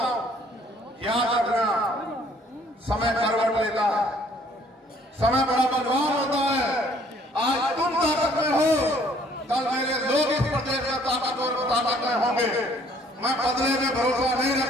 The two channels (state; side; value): normal; both; correlation 0.60